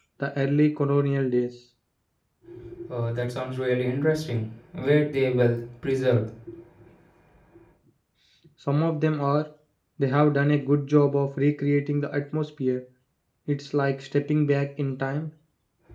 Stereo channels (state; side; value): identical; both; correlation 1.00